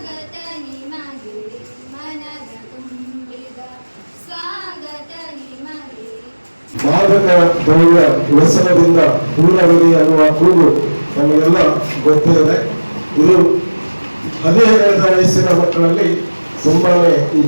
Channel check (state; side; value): inverted; both; correlation -1.00